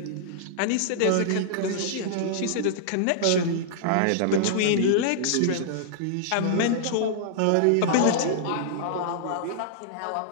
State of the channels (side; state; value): both; different; correlation -0.01